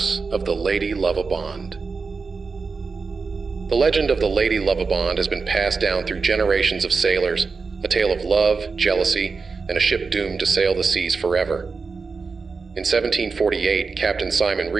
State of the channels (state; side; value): quieter; left; 4.7 dB